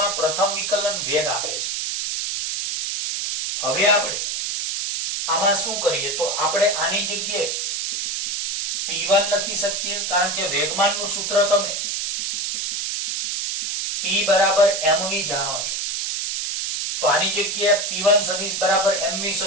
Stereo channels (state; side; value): noise; right; hiss, 2 dB below the sound